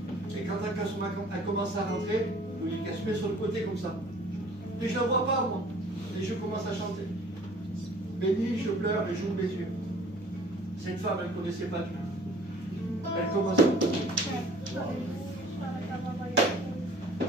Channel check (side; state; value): both; normal; correlation 0.51